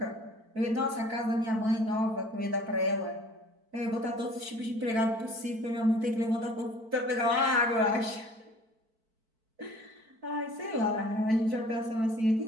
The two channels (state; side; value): late; left; 4.5 ms